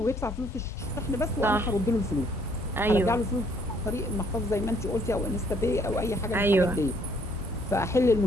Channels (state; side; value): normal; both; correlation 0.65